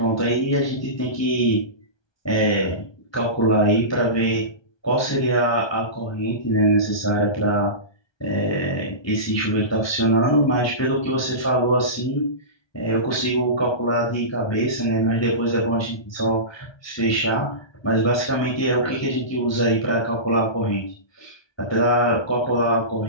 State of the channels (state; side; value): late; right; 1.2 ms